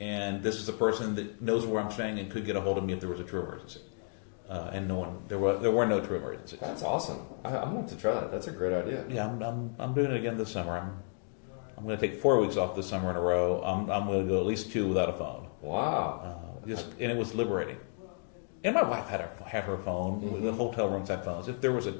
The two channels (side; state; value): right; silent; 56 dB below the other